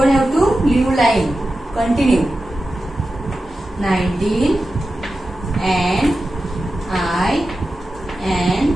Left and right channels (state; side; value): normal; both; correlation 0.93